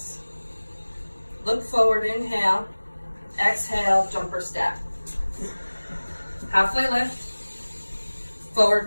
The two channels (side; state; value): both; inverted; correlation -1.00